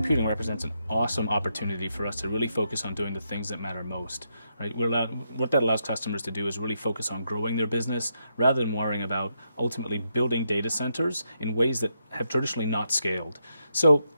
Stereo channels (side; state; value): both; inverted; correlation -0.81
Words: represents an awesome opportunity for us to really focus on doing the things that matter most. Right? What that allows customers to do is really focus on growing their business rather than worrying about ultimately building data centers in ways that have traditionally not scaled. So